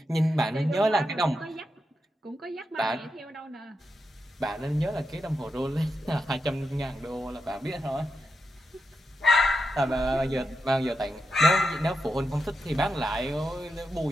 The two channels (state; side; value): normal; both; correlation 0.86